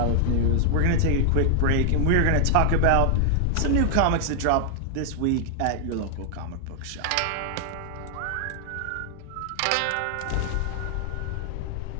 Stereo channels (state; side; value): different; both; correlation 0.00